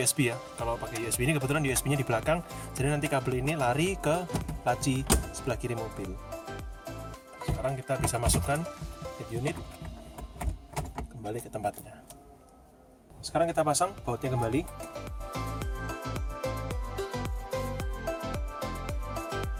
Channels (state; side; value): identical; both; correlation 1.00